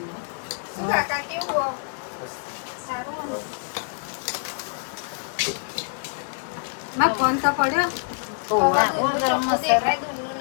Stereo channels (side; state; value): right; silent; digital silence